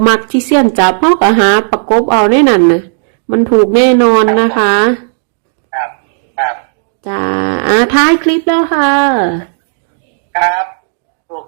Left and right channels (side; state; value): left; silent; digital silence